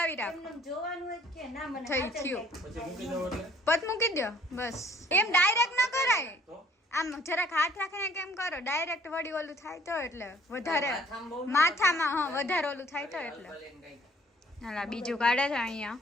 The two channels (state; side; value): normal; both; correlation 0.59